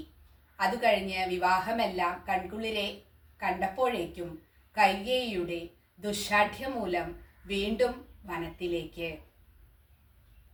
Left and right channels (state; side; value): identical; both; correlation 1.00